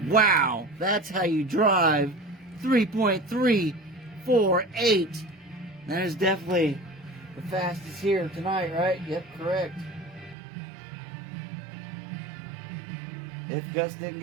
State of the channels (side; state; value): left; drops out; at 10.4 s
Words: Wow, that's how you drive. 3.348. That is definitely the fastest here tonight, right? Yep, correct. If Gus didn't